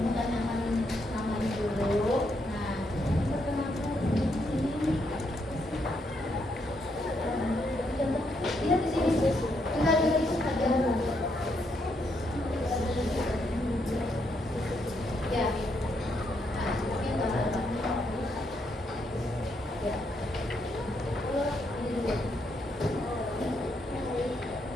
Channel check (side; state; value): both; normal; correlation 0.77